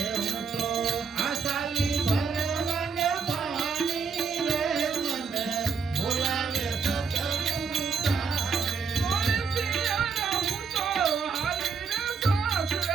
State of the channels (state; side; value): quieter; left; 5.6 dB